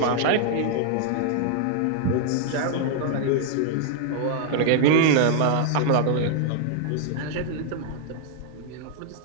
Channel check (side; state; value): both; different; correlation -0.01